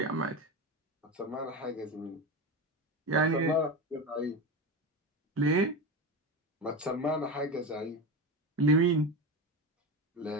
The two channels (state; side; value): normal; both; correlation 0.20